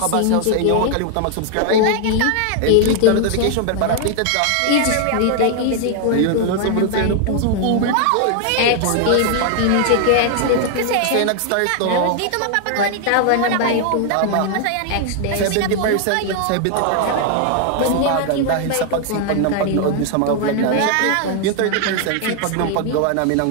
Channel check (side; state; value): both; different; correlation 0.00